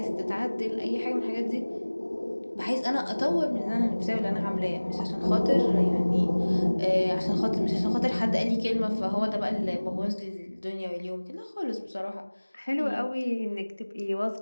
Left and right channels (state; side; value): inverted; both; correlation -1.00